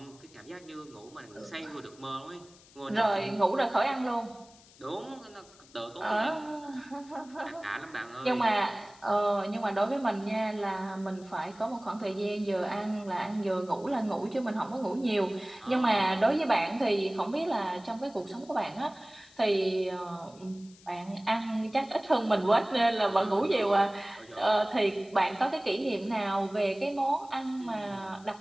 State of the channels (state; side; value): noise; left; hiss, 25 dB below the sound